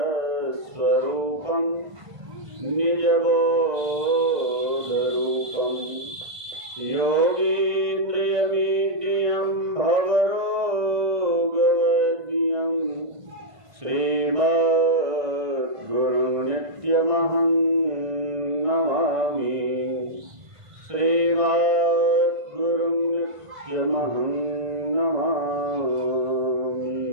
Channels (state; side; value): late; left; 1.5 ms